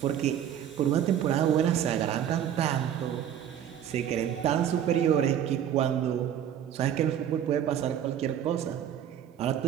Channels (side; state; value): left; quieter; 9.9 dB